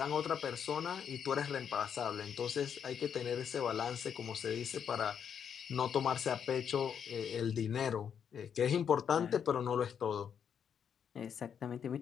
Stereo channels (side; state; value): right; quieter; 7.8 dB